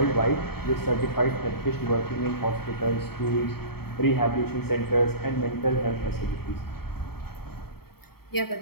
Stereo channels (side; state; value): right; late; 0.95 ms